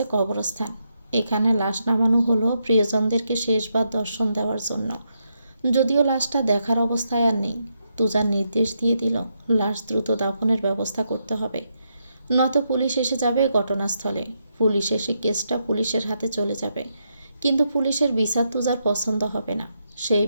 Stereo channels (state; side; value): inverted; both; correlation -0.81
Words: কবরস্থান। এখানে লাশ নামানো হলো প্রিয়জনদেরকে শেষবার দর্শন দেওয়ার জন্য। যদিও লাশটা দেখার অবস্থায় আর নেই। তুজার নির্দেশ দিয়ে দিল লাশ দ্রুত দাফনের ব্যবস্থা করতে হবে, নয়তো পুলিশ এসে যাবে ঘটনাস্থলে। পুলিশ এসে কেসটা পুলিশের হাতে চলে যাবে, কিন্তু পুলিশের বিচার তুজার পছন্দ হবে না। সেই